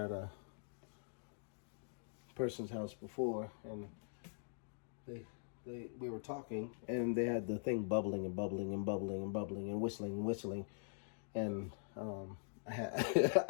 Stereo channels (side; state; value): right; silent; digital silence